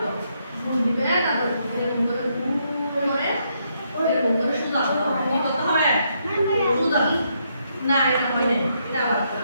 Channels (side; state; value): both; inverted; correlation -0.76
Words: দিবে, তারপরে এরকম করে সুদা কি করতে হবে, সুদা না এটা হয় না, এটা আবার